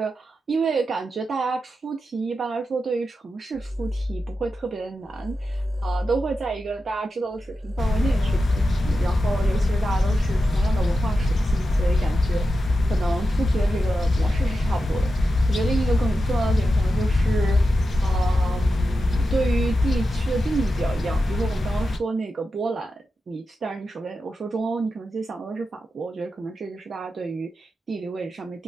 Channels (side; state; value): both; normal; correlation 0.90